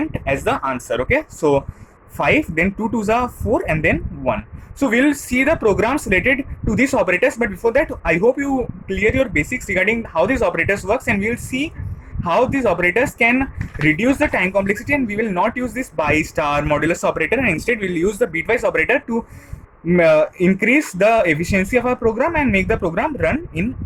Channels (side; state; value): both; identical; correlation 1.00